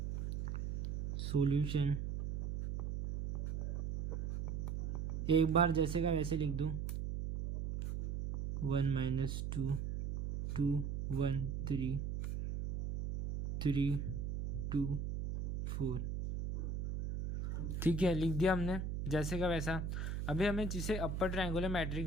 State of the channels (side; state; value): right; noise; hum, 2 dB below the sound